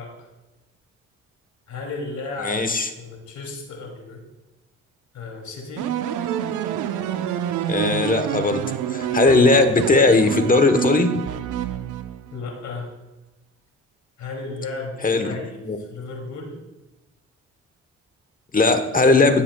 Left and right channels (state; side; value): normal; both; correlation 0.34